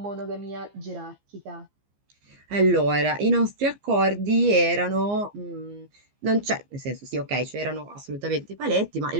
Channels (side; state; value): left; late; 15 ms